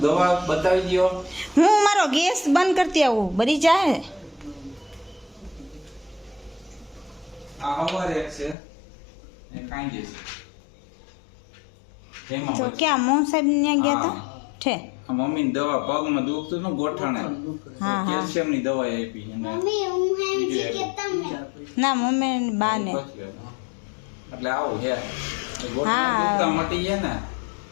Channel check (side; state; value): right; drops out; at 8.6 s